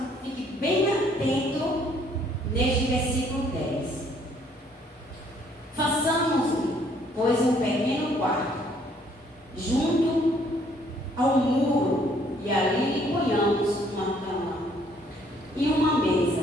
fiquem bem atentos neste versículo 10. Façamos, pois, um pequeno quarto junto ao muro, e ali lhe ponhamos uma cama, e uma mesa,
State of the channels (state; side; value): normal; both; correlation 0.64